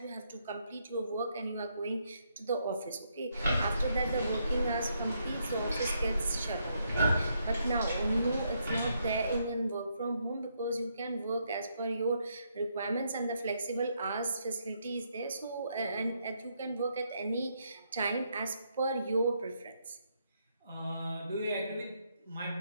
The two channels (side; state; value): both; inverted; correlation -0.76